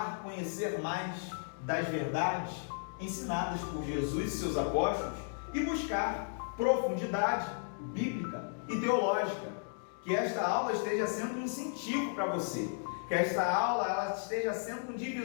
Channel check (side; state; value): right; silent; digital silence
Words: conhecer mais das verdades ensinadas por Jesus e seus apóstolos e buscar profundidade bíblica e teológica. Que esta aula esteja sendo um incentivo para você. Que esta aula ela esteja sendo um